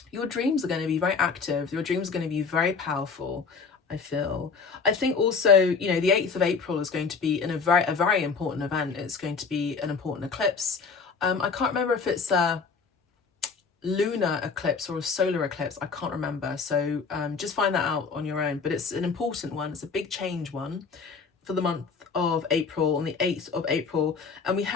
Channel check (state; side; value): quieter; right; 5.1 dB